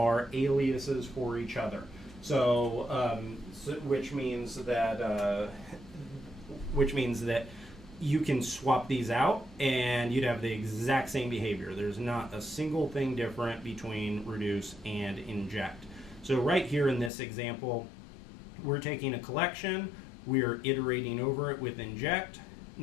aliases for each other. So, which means that you can swap these out and you'd have the exact same behavior. There's not a single thing different between reduce and inject. So right here in this example, we're taking a collection, we're iterating over it with inject.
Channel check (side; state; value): right; drops out; at 17.1 s